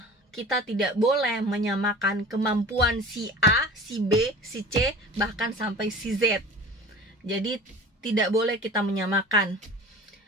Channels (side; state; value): both; normal; correlation 0.39